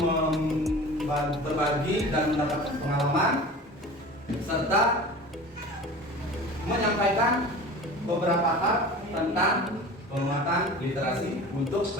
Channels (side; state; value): both; normal; correlation 0.37